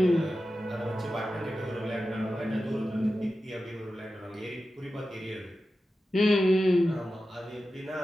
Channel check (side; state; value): both; normal; correlation 0.93